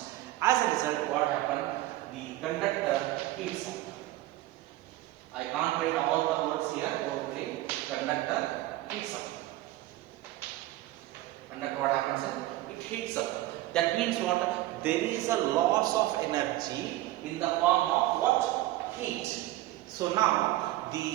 As a result, what happened? The conductor heats up. I can't write all the words here. Probably conductor heats up. Conductor, what happens? It heats up. That means what? There is a loss of energy in the form of what? Heat. So now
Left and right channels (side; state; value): left; quieter; 16.5 dB